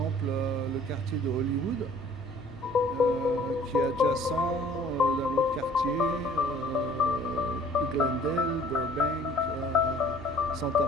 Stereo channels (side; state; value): both; normal; correlation 0.53